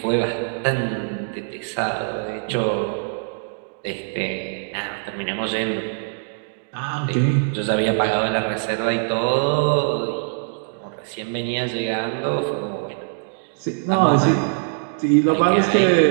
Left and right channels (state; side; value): silent; left; digital silence